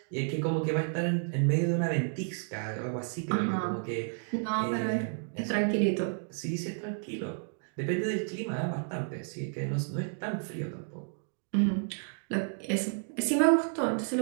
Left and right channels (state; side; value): silent; left; 57 dB below the other